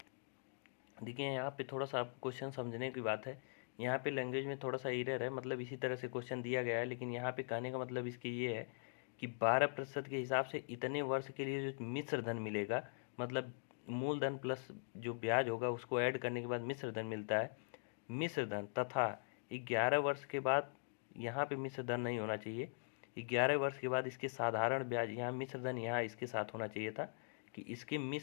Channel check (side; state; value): right; silent; digital silence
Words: देखिए यहाँ पे थोड़ा सा आप क्वेश्चन समझने की बात है, यहाँ पे लैंग्वेज में थोड़ा सा एरर है, मतलब इसी तरह से क्वेश्चन दिया गया है, लेकिन यहाँ पे कहने का मतलब इसकी ये है कि 12% के हिसाब से इतने वर्ष के लिए जो मिश्र धन मिलेगा, मतलब मूलधन प्लस जो ब्याज होगा उसको ऐड करने के बाद मिश्र धन मिलता है। मिश्र धन तथा 11 वर्ष के बाद, यहाँ पे मिश्र धन नहीं होना चाहिए, 11 वर्ष के बाद इसके साधारण ब्याज, यहाँ मिश्र धन यहाँ इसके साथ होना चाहिए था कि इसके